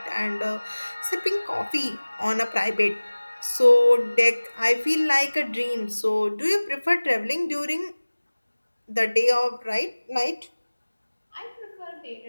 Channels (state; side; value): inverted; both; correlation -1.00